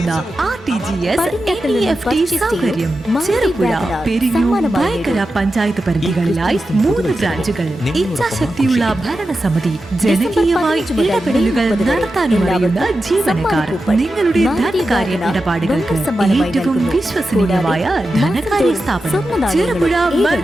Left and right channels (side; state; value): both; normal; correlation 0.91